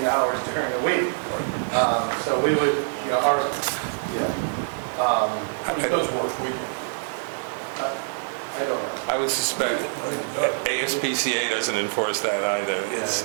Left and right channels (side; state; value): left; silent; digital silence